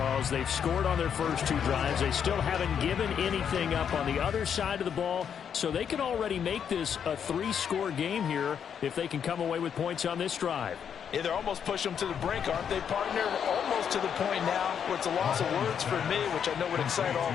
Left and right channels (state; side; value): quieter; right; 7.9 dB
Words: They've scored on their first 2 drives. They still haven't given anything up on the other side of the ball, so they can already make this a 3-score game here if they can come away with points on this drive. Yeah, they're almost pushing them to the brink, aren't they, partner? Almost to the point now where it's a loss of words for me, which I know would excite all